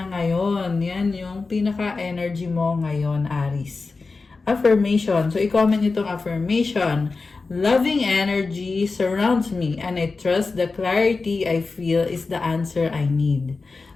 ngayon. Yan yung pinaka-energy mo ngayon, Aries. Affirmation. So, i-comment itong affirmation. Loving energy surrounds me and I trust the clarity I feel is the answer I need.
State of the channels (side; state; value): right; quieter; 4.0 dB